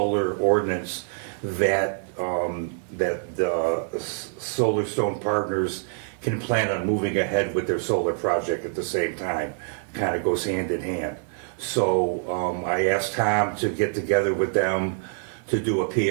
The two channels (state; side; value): silent; left; 61 dB below the other